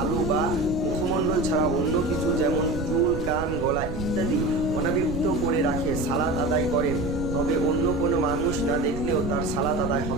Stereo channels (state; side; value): noise; right; rumble, 7 dB below the sound